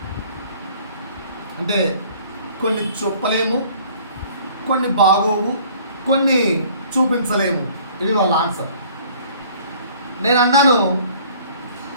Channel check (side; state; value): both; inverted; correlation -0.54